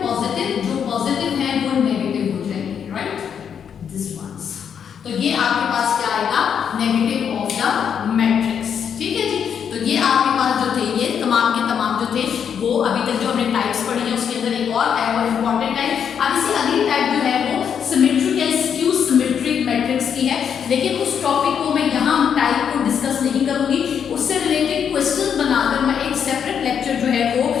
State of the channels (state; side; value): quieter; right; 7.8 dB